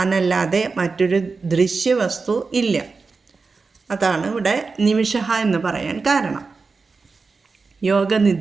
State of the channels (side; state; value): left; quieter; 4.4 dB